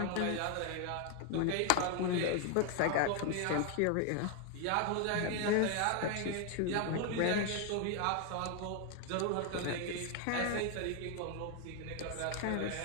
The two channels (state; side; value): different; both; correlation 0.01